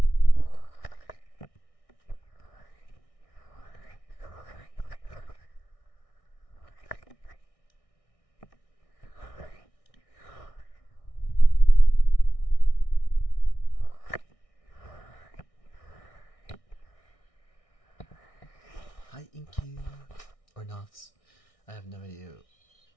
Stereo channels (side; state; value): right; late; 1.6 ms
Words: Hi, Inky. Or not. I have no idea